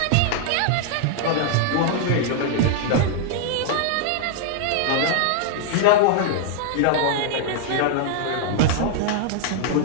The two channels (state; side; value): different; both; correlation -0.01